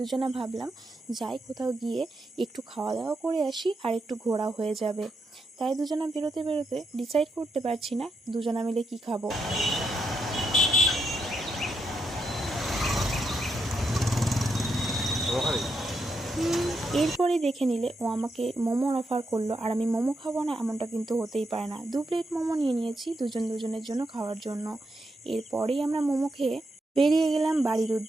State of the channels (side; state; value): both; normal; correlation 0.82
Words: ভাবলাম যাই কোথাও গিয়ে একটু খাওয়া দাওয়া করে আসি আর একটু ঘোরা হয়ে যাবে। তাই দুজনা বেরোতে বেরোতে ডিসাইড করতে পারছি না দুজনা মিলে কি খাবো। এরপরে দেখে নিলে ও আমাকে মোমোর অফার করলো, আর আমি মোমো খাবো না এমনটা কিন্তু হতেই পারে না। 2 প্লেট মোমো নিয়ে নিয়েছি দুজনের জন্য খাওয়ার জন্য। এরপরেই আমরা মোমো খেয়ে বেরিয়ে গেলাম বাড়ির